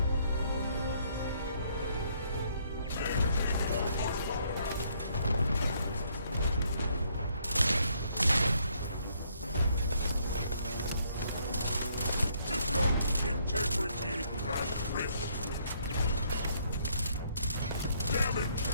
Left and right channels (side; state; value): both; inverted; correlation -0.68